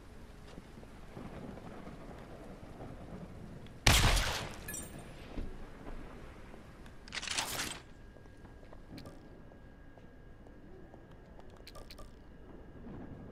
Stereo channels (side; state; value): both; identical; correlation 1.00